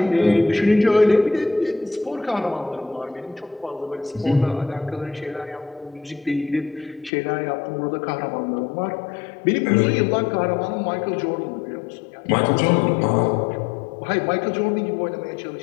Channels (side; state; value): right; drops out; at 7.1 s